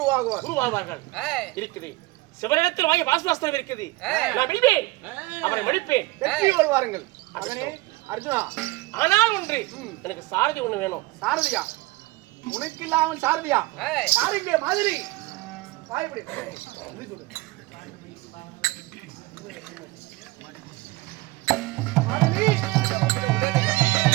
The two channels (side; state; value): left; quieter; 21.5 dB